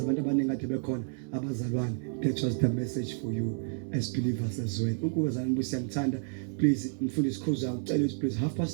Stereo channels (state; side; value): silent; left; 58 dB below the other